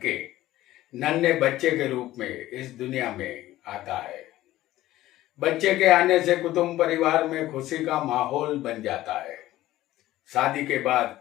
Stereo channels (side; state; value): right; quieter; 15.4 dB